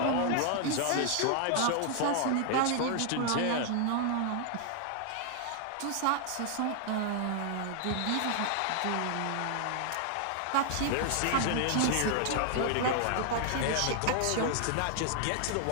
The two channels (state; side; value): different; both; correlation 0.00